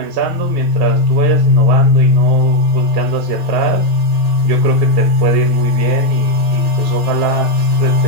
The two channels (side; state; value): left; late; 1.8 ms